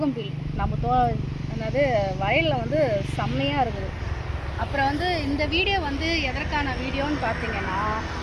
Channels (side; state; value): both; identical; correlation 1.00